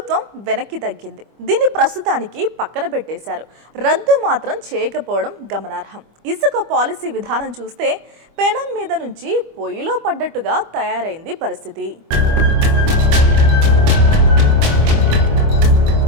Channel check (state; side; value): late; left; 25 ms